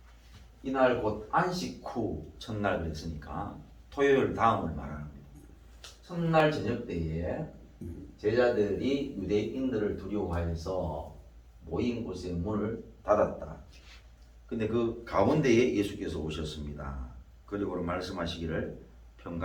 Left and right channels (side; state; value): both; identical; correlation 1.00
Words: 이날 곧 안식 후 첫날 그랬으니까 토요일 다음을 말하는 겁니다. 첫날 저녁 때에 제자들이 유대인들을 두려워하여서 모인 곳에 문을 닫았다. 근데 그 가운데에 예수께서 오셨습니다. 그리고 말씀하시기를